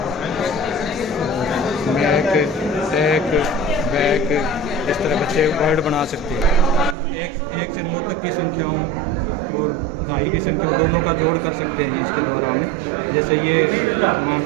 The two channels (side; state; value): left; drops out; at 7.0 s